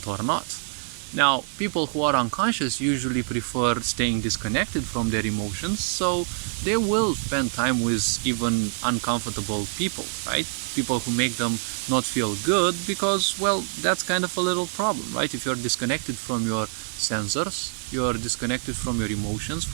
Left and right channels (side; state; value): left; silent; 61 dB below the other